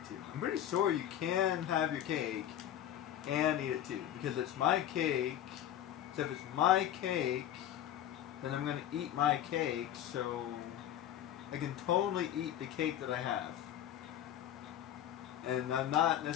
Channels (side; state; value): right; quieter; 11.3 dB